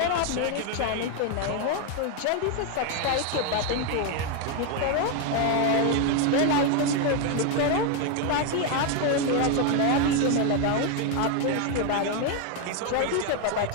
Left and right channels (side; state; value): both; different; correlation 0.01